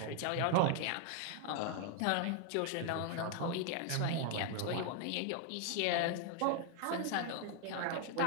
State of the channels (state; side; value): different; both; correlation 0.00